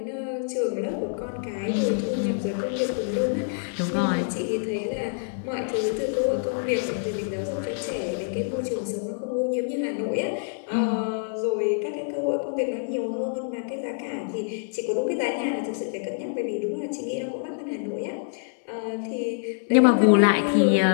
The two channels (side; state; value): right; silent; 60 dB below the other